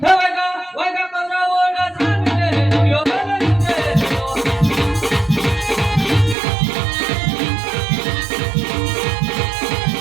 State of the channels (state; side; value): drops out; left; at 6.4 s